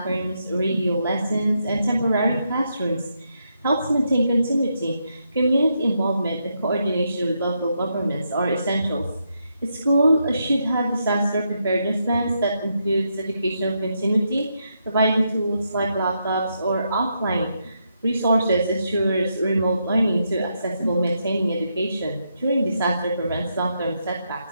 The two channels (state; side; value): inverted; both; correlation -0.81